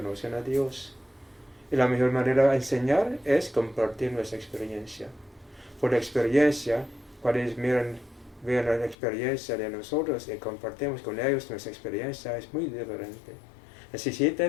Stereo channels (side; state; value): right; drops out; at 9.0 s